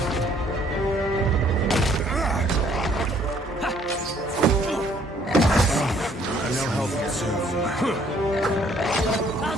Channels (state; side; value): normal; both; correlation 0.62